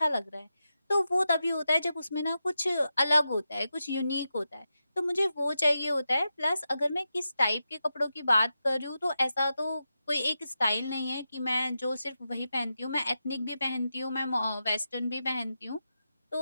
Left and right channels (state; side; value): inverted; both; correlation -0.89